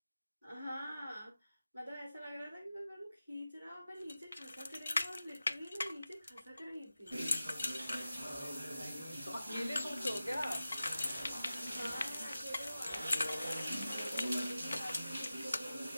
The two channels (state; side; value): inverted; both; correlation -0.93